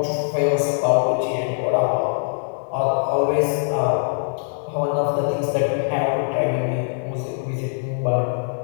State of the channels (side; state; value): right; silent; 64 dB below the other